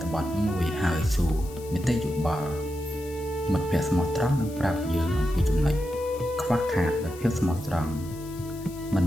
ថបទមួយហើយសួរនីតិយោបល់មិត្តភក្តិស្មោះត្រង់នឹងប្រាប់យើងអំពីចំណុចខ្វះខាតនៃភាពស្មោះត្រង់មិន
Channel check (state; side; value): noise; left; hiss, 19 dB below the sound